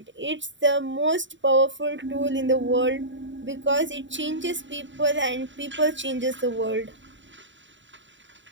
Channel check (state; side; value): late; left; 0.54 ms